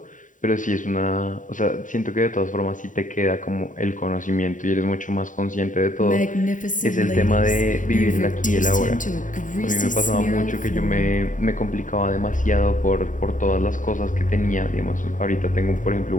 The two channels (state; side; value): late; right; 0.38 ms